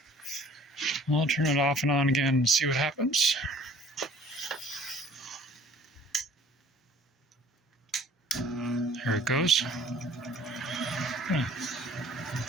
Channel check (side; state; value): both; normal; correlation 0.52